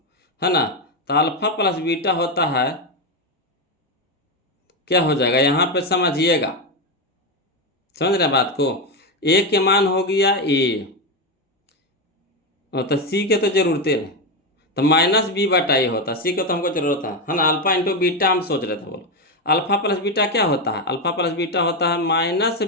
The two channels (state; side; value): normal; both; correlation 0.10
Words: है ना। तो अल्फा प्लस बीटा होता है, क्या हो जाएगा यहाँ पे समझिएगा, समझ रहे बात को। ए के मान हो गया ए, और तो सी के तो जरूरत नहीं, तो -b/a होता है, सी के तो हमको जरूरत है ना। अल्फा इंटू बीटा हम सोच रहे थे, बोलो अल्फा प्लस बीटा क्या होता है, अल्फा प्लस बीटा होता है -b/a, तो